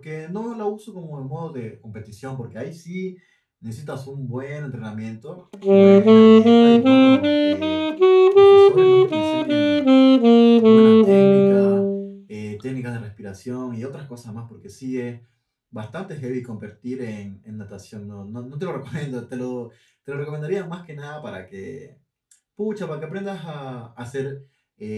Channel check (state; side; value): identical; both; correlation 1.00